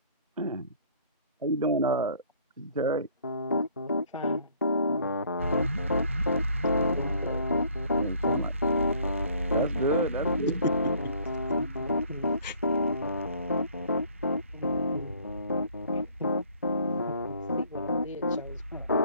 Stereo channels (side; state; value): both; inverted; correlation -0.58